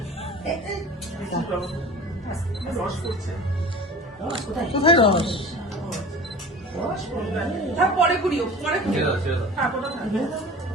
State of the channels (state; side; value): normal; both; correlation 0.39